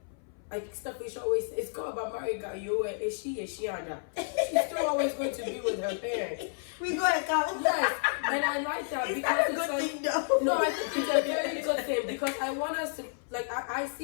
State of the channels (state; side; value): silent; right; 57 dB below the other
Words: stuff we should always, it's called about married guy. Is she Ada? She's still always going to be with her parents. We go and count. Yes, and I like that because it's like, thing though? No, I think it's a very good thing because I want us to like I